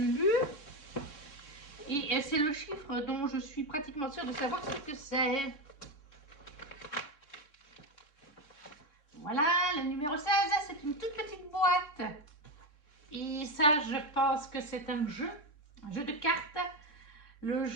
Et c'est le chiffre dont je suis pratiquement sûre de savoir ce que c'est. Voilà, le numéro 16, c'est une toute petite boîte. Et ça, je pense que c'est un jeu de cartes. Le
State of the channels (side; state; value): right; late; 3.6 ms